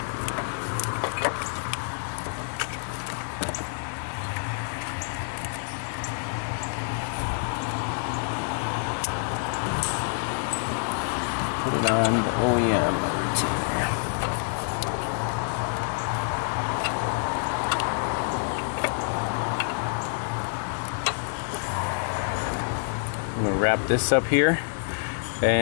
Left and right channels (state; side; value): silent; right; digital silence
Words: Put it on the OEM retainer. I'm going to wrap this up here